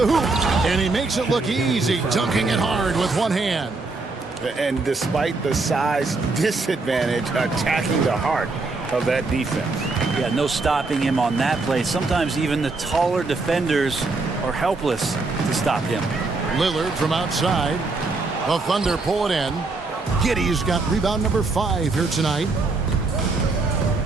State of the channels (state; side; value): quieter; left; 3.6 dB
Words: hoop, and he makes it look easy, dunking it hard with one hand. And despite the size disadvantage, attacking the heart of that defense. Yeah, no stopping him on that play. Sometimes even the taller defenders are helpless to stop him. Lillard from outside. The Thunder pull it in. Giddey's got rebound number 5 here tonight.